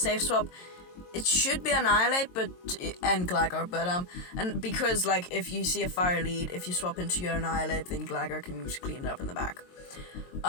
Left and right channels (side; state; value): right; late; 22 ms